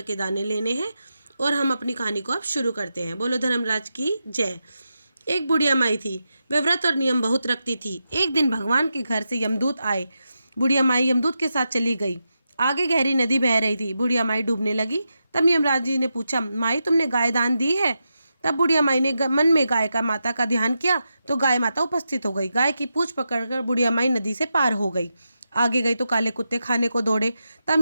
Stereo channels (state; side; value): inverted; both; correlation -0.88